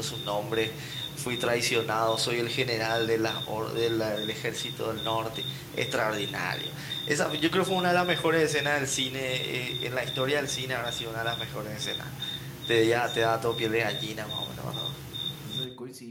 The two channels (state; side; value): identical; both; correlation 1.00